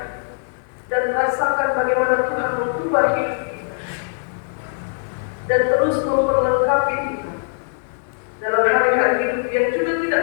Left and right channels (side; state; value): right; silent; 59 dB below the other